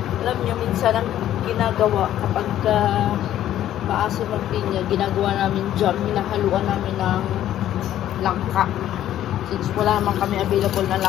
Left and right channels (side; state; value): right; quieter; 12.1 dB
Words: Alam nyo, minsan ang ginagawa kapag maasim ang pinya, ginagawa namin jam, hinahaluan namin ng langka. Since wala naman kami available na